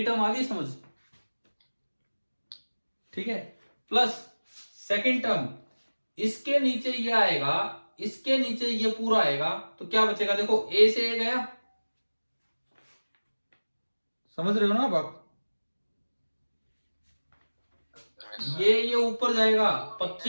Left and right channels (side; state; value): both; inverted; correlation -1.00